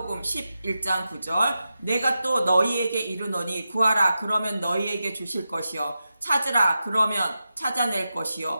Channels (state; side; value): inverted; both; correlation -0.91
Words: 11장 9절 내가 또 너희에게 이르노니 구하라 그러면 너희에게 주실 것이요 찾으라 그러면 찾아낼